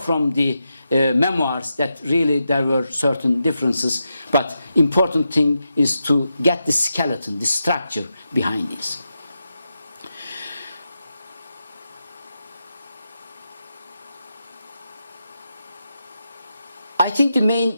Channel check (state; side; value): inverted; both; correlation -0.87